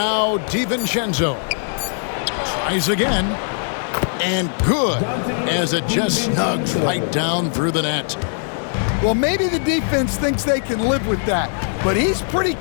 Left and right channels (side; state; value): right; silent; 65 dB below the other